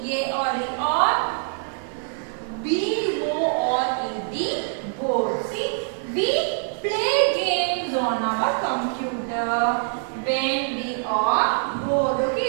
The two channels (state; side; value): silent; left; 62 dB below the other